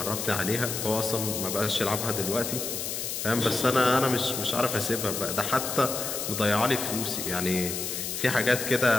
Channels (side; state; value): left; noise; hiss, 4 dB below the sound